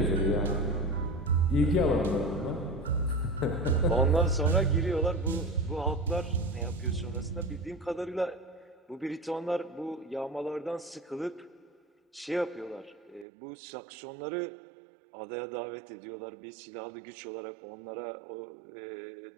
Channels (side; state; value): left; drops out; at 13.2 s